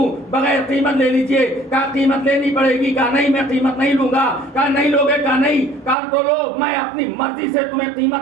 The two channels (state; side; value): drops out; left; at 6.0 s